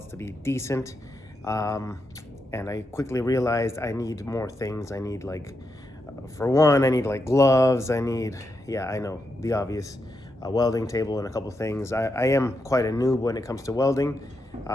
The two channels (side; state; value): both; normal; correlation 0.84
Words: to be decent. And I quickly realized I need more things. I need for one, I need gloves. I need, yeah, I know, the obvious, a welding table and a couple things. I am quite a noob when it comes to welding.